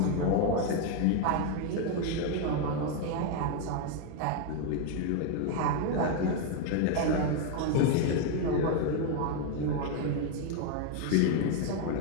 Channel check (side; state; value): both; different; correlation 0.01